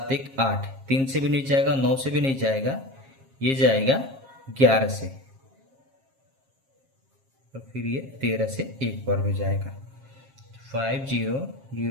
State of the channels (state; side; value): late; left; 7.4 ms